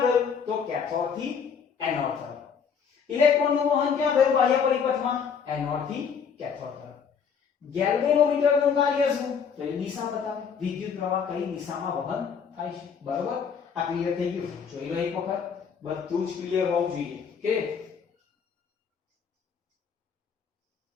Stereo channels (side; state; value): right; quieter; 6.6 dB